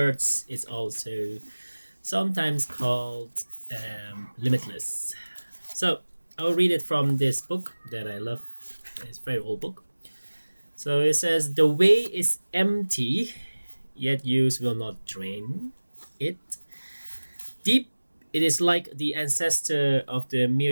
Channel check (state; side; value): inverted; both; correlation -1.00